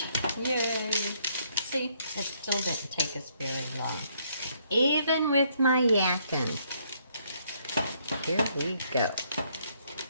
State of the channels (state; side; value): inverted; both; correlation -0.70